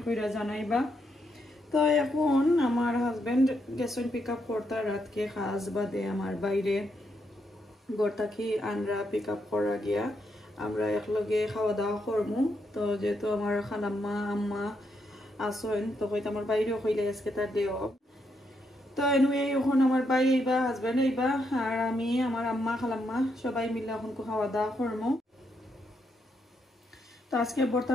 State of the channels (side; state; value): both; normal; correlation 0.79